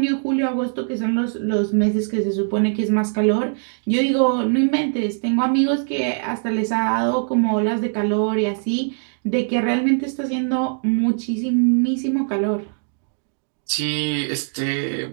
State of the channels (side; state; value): left; silent; 65 dB below the other